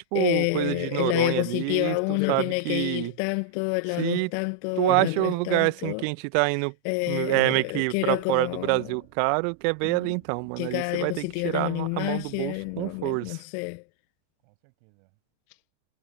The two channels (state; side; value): different; both; correlation -0.02